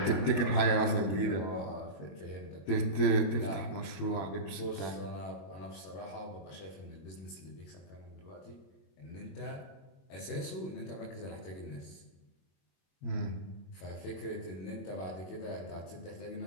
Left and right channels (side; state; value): right; late; 21 ms